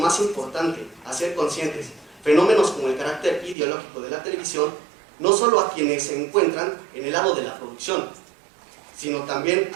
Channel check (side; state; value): left; drops out; at 3.6 s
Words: importante hacer conscientes fenómenos como el carácter ideológico de la televisión, no solo a quienes se encuentran en el lado de la producción, sino también